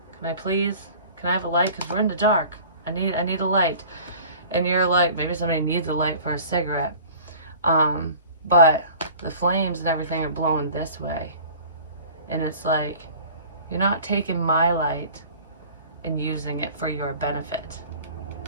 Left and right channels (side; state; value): both; inverted; correlation -0.44